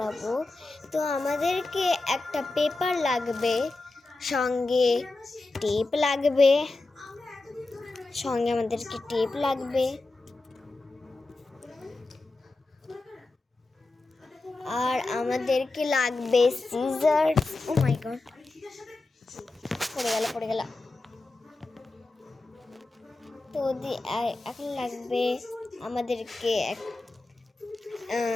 তো আমাদেরকে একটা পেপার লাগবে, সঙ্গে টেপ লাগবে, আর আমাদেরকে লাগবে সিজার্স। ও মাই গড, পড়ে গেল। তো এখন লাগবে আমাদেরকে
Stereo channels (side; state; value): right; quieter; 3.2 dB